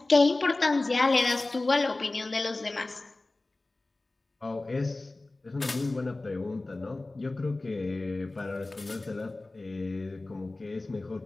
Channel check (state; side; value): quieter; right; 3.0 dB